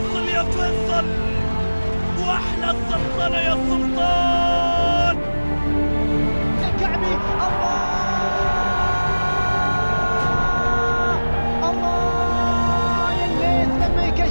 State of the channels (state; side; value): inverted; both; correlation -1.00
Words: يا فيصل وأحلى سلطنة يا سلطان. الكعبي الله يا الليث لما